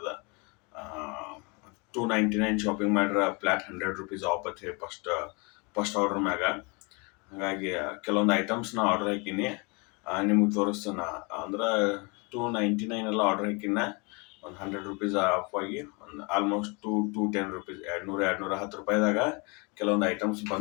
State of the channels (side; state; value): right; quieter; 30.1 dB